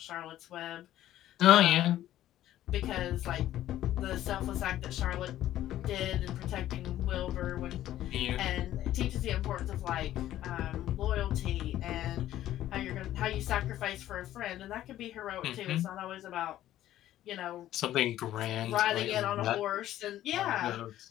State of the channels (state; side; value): quieter; right; 13.2 dB